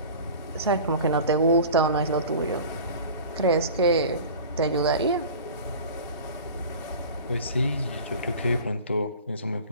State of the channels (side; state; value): both; inverted; correlation -0.39